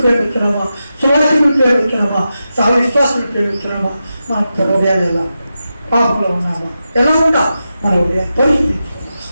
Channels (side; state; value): both; inverted; correlation -0.90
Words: ప్రేమిస్తున్నామా? సువాసికులు ప్రేమిస్తున్నామా? సహ విశ్వాసులు ప్రేమిస్తున్నామా? మన హృదయాలు ఎలా పాపంలో ఉన్నామా? ఎలా ఉంటా మన హృదయం